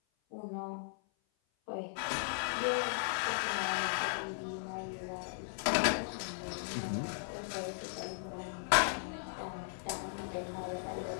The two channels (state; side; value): silent; right; 53 dB below the other